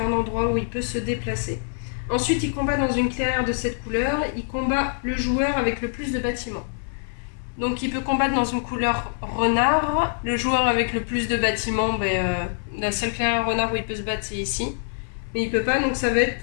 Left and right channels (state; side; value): silent; right; digital silence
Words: endroit où il peut se déplacer. Ensuite, il combat dans une clairière de cette couleur, il combat le joueur avec le plus de bâtiments. Donc il peut combattre dans une couleur renard. Le joueur avec le plus de bâtiments, la seule clairière renard où il peut se battre, c'est ici. Mais il peut pas, donc ça va être